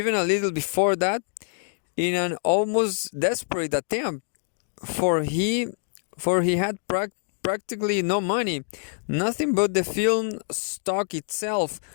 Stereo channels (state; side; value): silent; right; digital silence